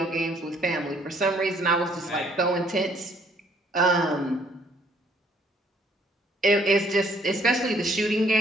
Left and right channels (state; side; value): normal; both; correlation 0.64